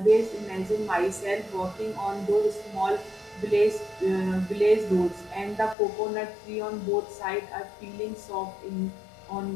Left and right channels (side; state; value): right; drops out; at 5.8 s